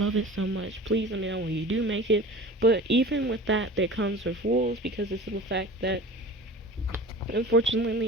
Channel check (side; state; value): both; normal; correlation 0.39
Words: it so much. Please let me know when you do make it. But even with that, there comes with rules, because the simple fact that